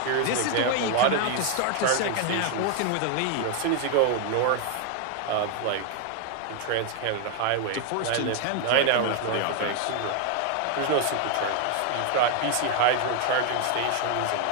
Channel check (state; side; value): different; both; correlation 0.00